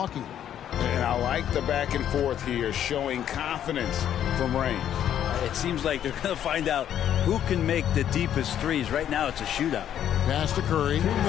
And I like the back and forth here, showing confidence from range. It seems like they're going to find out who can make the deepest threes. Right now, it's a shootout. Pass to Curry.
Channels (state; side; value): quieter; right; 10.3 dB